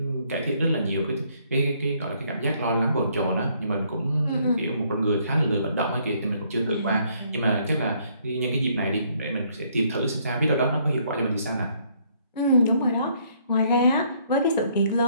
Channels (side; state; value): both; inverted; correlation -0.67